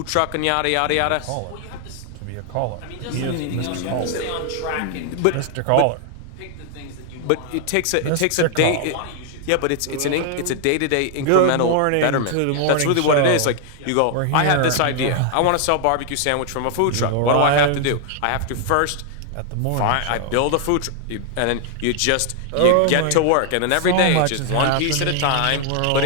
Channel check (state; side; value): different; both; correlation 0.00